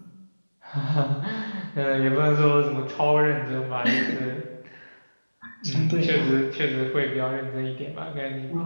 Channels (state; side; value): inverted; both; correlation -1.00